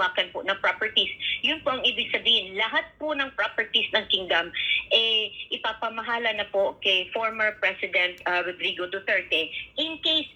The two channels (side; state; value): both; identical; correlation 1.00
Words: po ng properties. Yun po ang ibig sabihin. Lahat po ng properties ng kingdom, ipapamahala na po kay former President Rodrigo Duterte in case